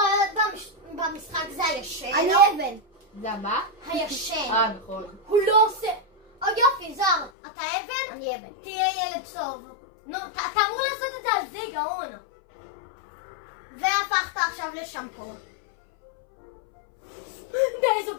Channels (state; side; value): drops out; right; at 7.3 s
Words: במשחק זה הישן. אני אבן. זה מה? הישן. נכון. הוא לא עושה... יופי, זר, אתה אבן? אני אבן. תהיה ילד טוב. נו, אתה אמור לעשות את זה על זה, גאון. והפכת עכשיו לשמפו. די, זו